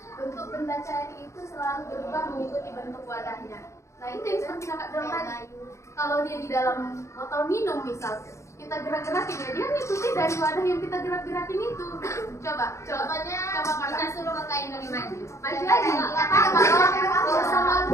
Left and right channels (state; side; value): late; right; 0.14 ms